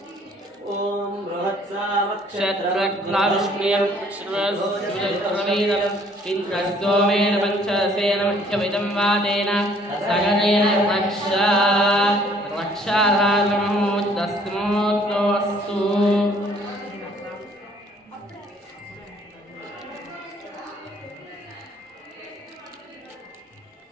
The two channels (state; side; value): normal; both; correlation 0.60